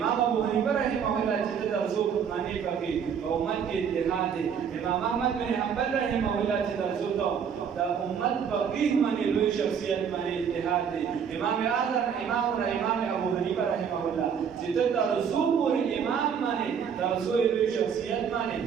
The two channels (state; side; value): quieter; left; 7.3 dB